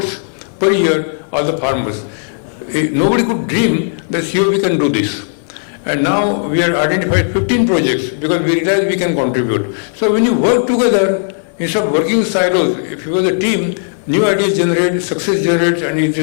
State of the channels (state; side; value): silent; right; digital silence